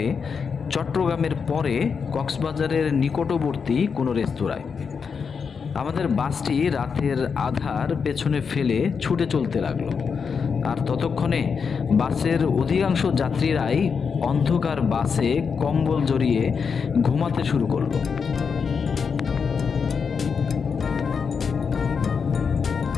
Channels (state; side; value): quieter; right; 5.9 dB